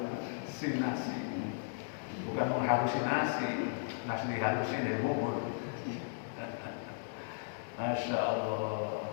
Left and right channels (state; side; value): silent; right; digital silence